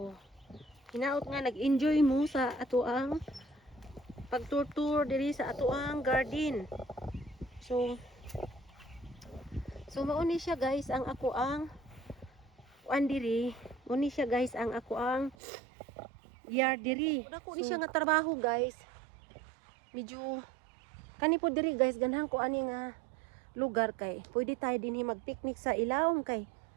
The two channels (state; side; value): drops out; left; at 15.4 s